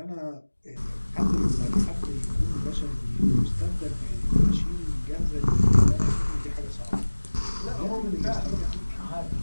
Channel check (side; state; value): both; inverted; correlation -1.00